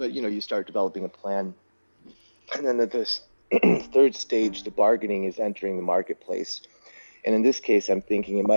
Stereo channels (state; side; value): inverted; both; correlation -1.00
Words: you know, you start developing a plan, and then at this third stage, the bargaining is entering the marketplace. And in this case, I'm thinking it